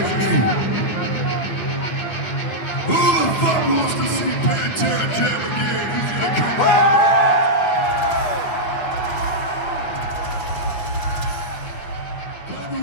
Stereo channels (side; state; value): right; late; 9.5 ms